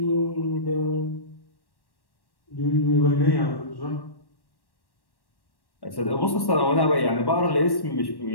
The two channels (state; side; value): late; right; 1.1 ms